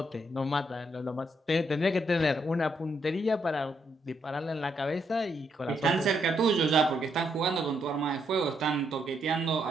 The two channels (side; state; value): both; normal; correlation 0.76